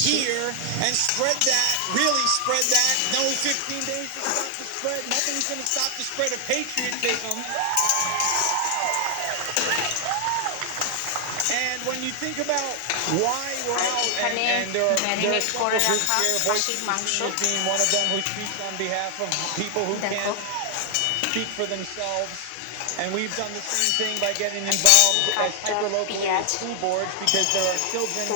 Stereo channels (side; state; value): both; different; correlation 0.00